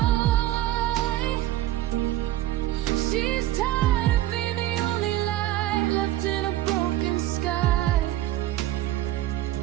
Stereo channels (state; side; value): quieter; left; 14.6 dB